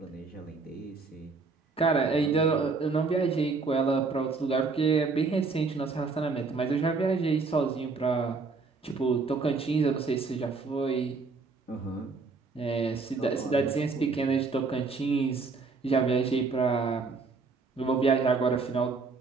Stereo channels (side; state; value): left; quieter; 4.3 dB